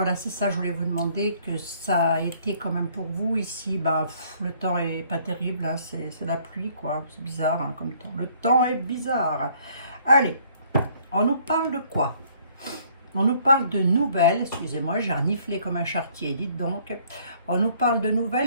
c'est ça, je voulais vous demander, que ça a été quand même pour vous. Ici, bah, le temps est pas terrible, hein, c'est la pluie, quoi. C'est bizarre, hein, comme temps. Le temps est bizarre. Allez, on nous parle de quoi? On nous parle de nouvelles, excusez-moi, j'ai reniflé comme un charretier, dites donc. On nous parle de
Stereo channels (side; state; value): both; inverted; correlation -0.62